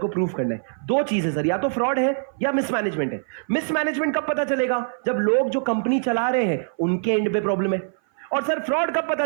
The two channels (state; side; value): silent; left; 57 dB below the other